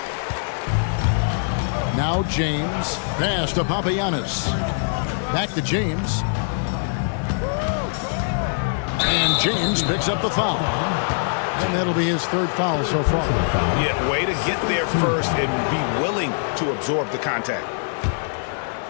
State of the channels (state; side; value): silent; right; digital silence